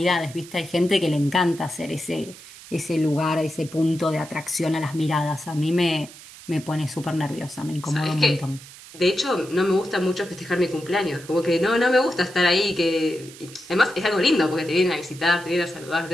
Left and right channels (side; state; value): right; noise; hiss, 18 dB below the sound